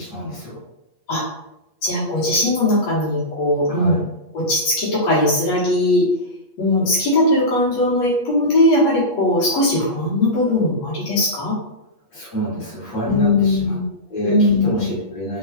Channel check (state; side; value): late; right; 8.4 ms